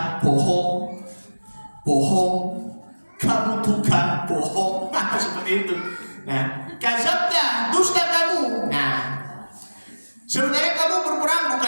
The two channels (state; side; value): inverted; both; correlation -1.00